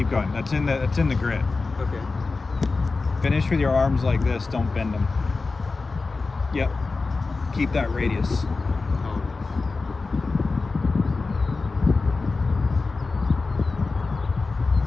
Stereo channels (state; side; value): quieter; right; 3.9 dB